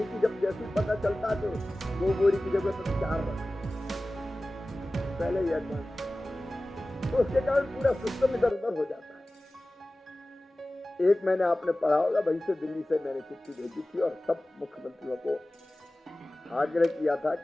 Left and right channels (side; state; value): both; normal; correlation 0.97